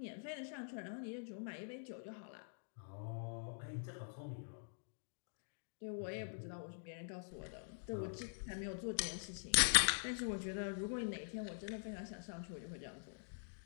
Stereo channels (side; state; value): right; silent; digital silence